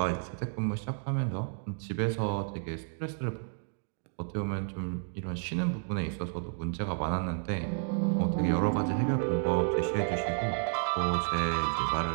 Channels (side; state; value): left; silent; digital silence